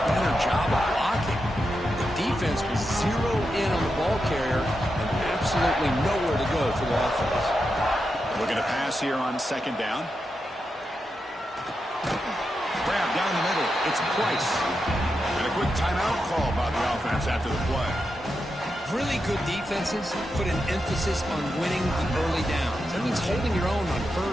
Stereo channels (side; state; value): both; normal; correlation 0.87